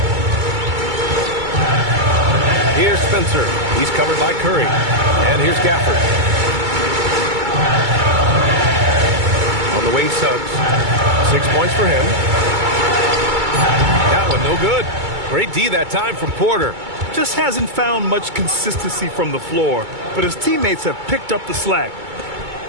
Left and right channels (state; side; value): late; left; 2.2 ms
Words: Here's Spencer. He's covered by Curry. And here's Gafford. On the wing, Suggs. 6 points for him. That one no good. Great D that time from Porter. Just hasn't found much consistency from the floor, but his teammates have picked up the slack.